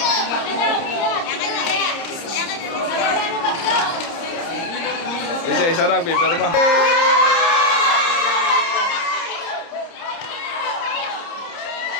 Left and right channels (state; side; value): late; right; 30 ms